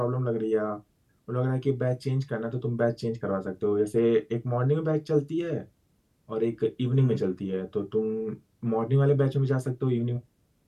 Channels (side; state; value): both; identical; correlation 1.00